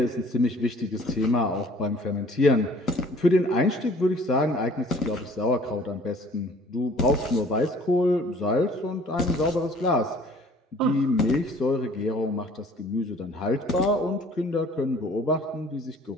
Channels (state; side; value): normal; both; correlation 0.53